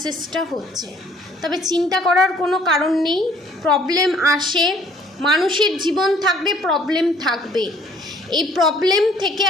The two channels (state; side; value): normal; both; correlation 0.59